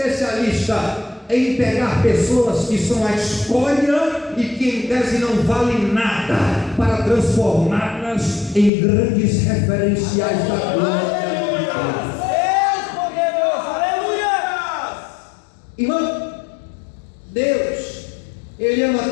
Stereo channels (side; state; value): right; drops out; at 8.7 s